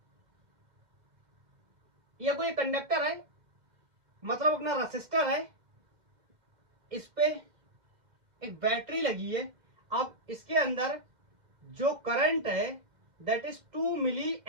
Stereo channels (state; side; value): late; left; 2.1 ms